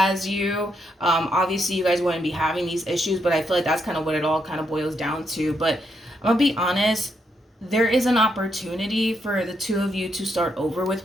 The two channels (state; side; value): normal; both; correlation 0.79